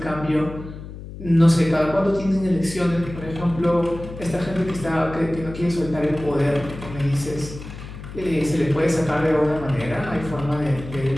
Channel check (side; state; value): left; noise; hum, 12 dB below the sound